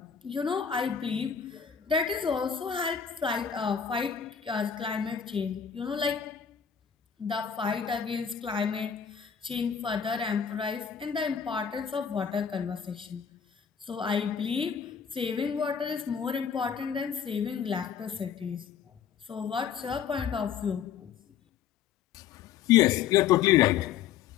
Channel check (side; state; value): right; quieter; 7.8 dB